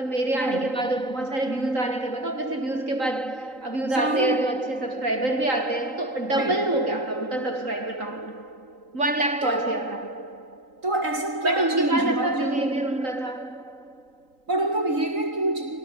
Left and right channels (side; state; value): left; late; 3.8 ms